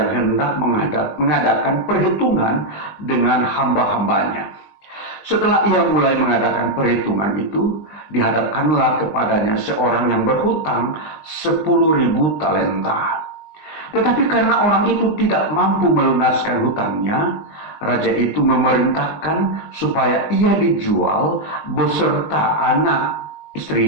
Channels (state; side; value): late; right; 20 ms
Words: hendak mengadakan perhitungan dengan hamba-hambanya. Setelah ia mulai mengadakan perhitungan itu, dihadapkanlah kepadanya seorang yang berhutang 10.000 talenta. Tetapi karena orang itu tidak mampu melunaskan hutangnya, raja itu memerintahkan supaya ia dijual beserta anak,